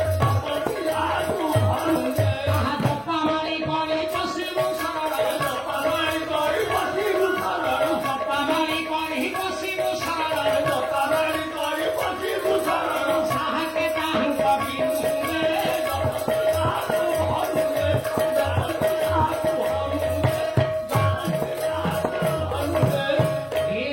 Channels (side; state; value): right; noise; hum, 30 dB below the sound